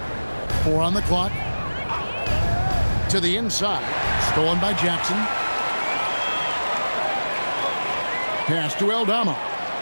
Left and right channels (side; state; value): both; inverted; correlation -1.00